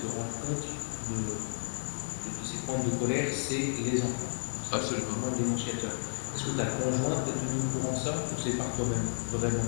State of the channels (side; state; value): right; silent; digital silence